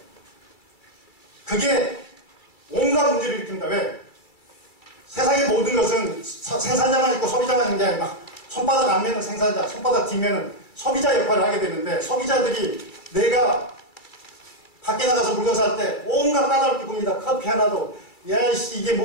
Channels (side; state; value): right; late; 2.3 ms